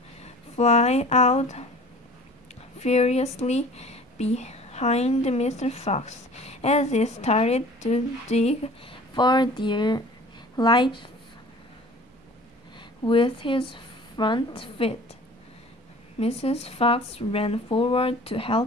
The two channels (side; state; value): both; normal; correlation 0.45